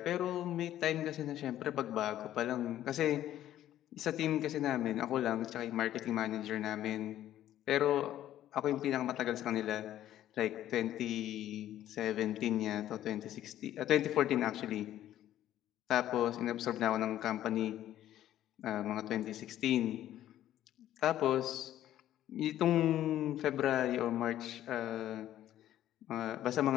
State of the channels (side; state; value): right; quieter; 12.5 dB